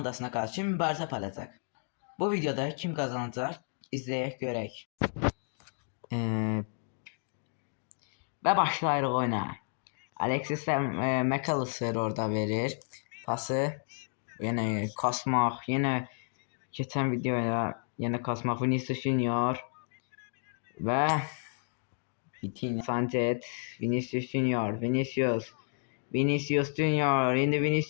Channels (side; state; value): right; silent; 57 dB below the other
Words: karşı mübarizə aparacaq. Bu videoda kim kazanacak izleyək görək. Ve başlayırıq oyuna. Alexis McAllister orada verir pası. Yine kasmaq, yine geçen videoda yine kasmaq. Vinicius Junior ve Vitinha, Sanchez, Vinicius Junior, Vinicius Junior, indi